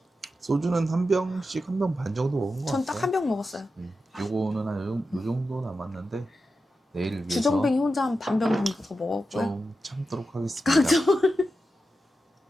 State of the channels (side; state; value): both; normal; correlation 0.90